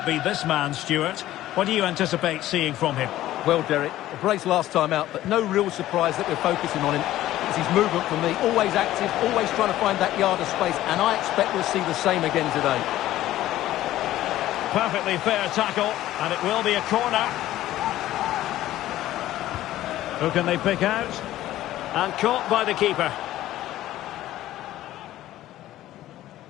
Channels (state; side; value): quieter; right; 14.4 dB